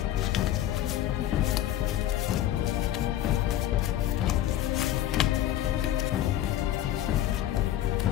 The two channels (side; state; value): right; quieter; 12.5 dB